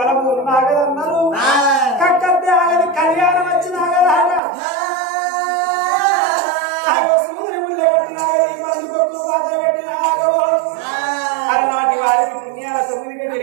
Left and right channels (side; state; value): left; drops out; at 4.4 s